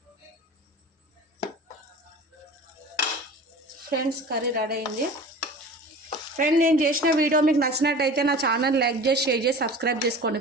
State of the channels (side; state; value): both; normal; correlation 0.38